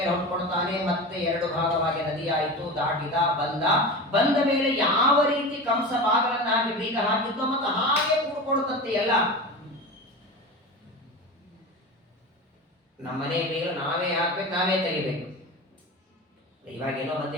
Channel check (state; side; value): normal; both; correlation 0.28